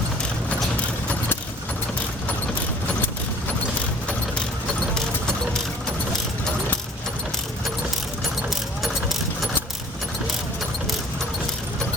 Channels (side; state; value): both; normal; correlation 0.51